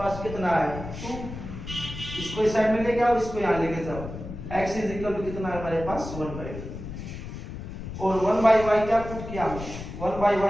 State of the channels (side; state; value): left; noise; rumble, 9 dB below the sound